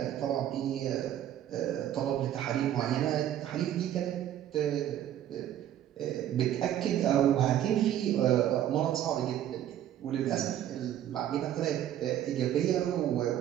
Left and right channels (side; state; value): left; quieter; 11.4 dB